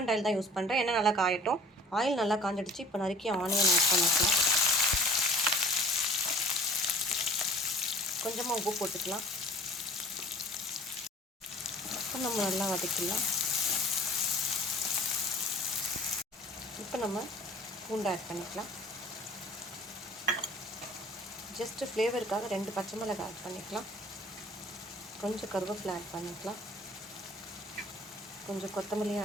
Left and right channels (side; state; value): both; normal; correlation 0.49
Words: ஆயில் தான் யூஸ் பண்ணுறேன். எண்ணெய் நல்லா காயட்டும். ஆயில் நல்லா காஞ்சிடுச்சு. இப்போ நறுக்கி ஆனியன் ஆட் பண்ணிக்கலாம். கொஞ்சமாக உப்பு போட்டுக்கலாம். இப்போ நம்ம நல்லா வதக்கிடலாம். இப்போ நம்ம பூண்டு ஆட் பண்ணிக்கலாம். ஜஸ்ட்டு ஃப்ளேவருக்காக 2 பச்சை மிளகாய் ஆட் பண்ணிக்கலாம். கொஞ்சம் கருவேப்பிலை ஆட் பண்ணிக்கலாம். கொஞ்சம் கொத்தமல்லியும்